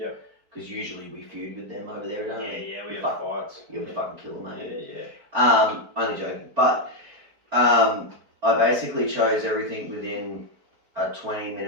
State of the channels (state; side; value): late; left; 4.5 ms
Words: Because usually we feud with them over there, don't we? Yeah, we have fights. Yeah, we fucking kill them, mate. Yeah. Only joking. But I basically chose everything within a